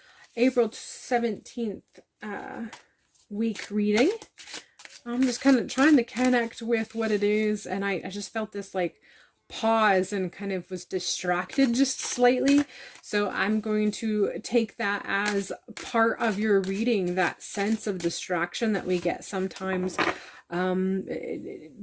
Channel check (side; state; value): both; identical; correlation 1.00